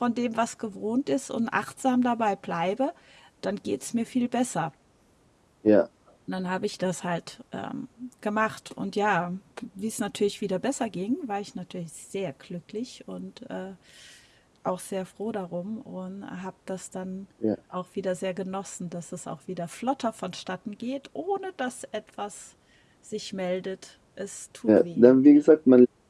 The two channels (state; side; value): identical; both; correlation 1.00